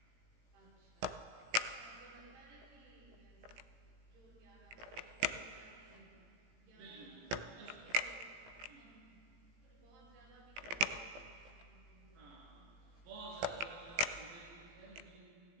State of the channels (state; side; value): late; left; 18 ms